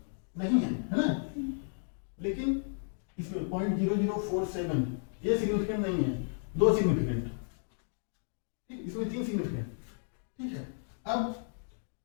नहीं है ना। लेकिन इसमें 0.0047 ये सिग्निफिकेंट नहीं है, दो सिग्निफिकेंट, ठीक, इसमें 3 सिग्निफिकेंट, ठीक है। अब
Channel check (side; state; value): right; silent; digital silence